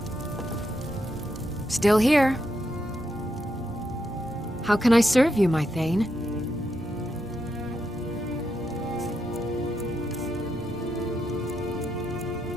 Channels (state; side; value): normal; both; correlation 0.82